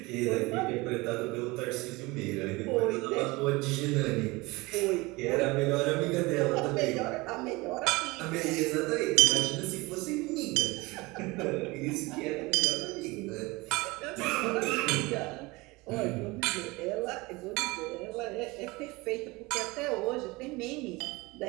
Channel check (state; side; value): quieter; left; 23.2 dB